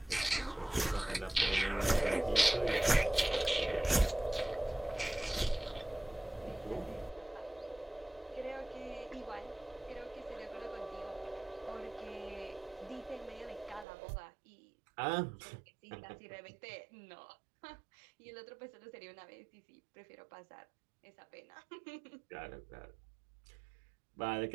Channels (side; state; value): left; drops out; at 13.9 s